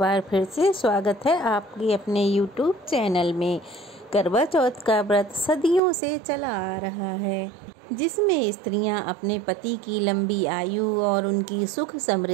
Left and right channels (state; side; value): drops out; left; at 5.8 s